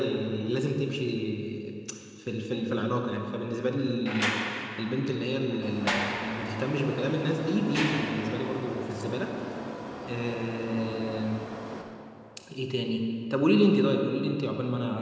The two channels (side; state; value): both; identical; correlation 1.00